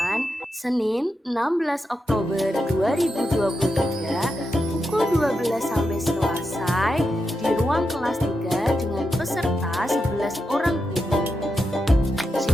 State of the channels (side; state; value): both; normal; correlation 0.87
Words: Senin 16 Oktober 2023 pukul 12 sampai selesai di ruang kelas 3 dengan peserta 11 orang guru.